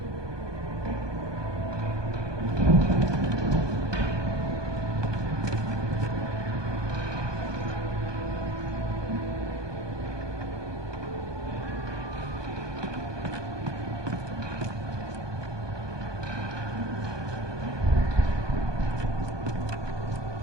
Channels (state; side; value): late; left; 1.2 ms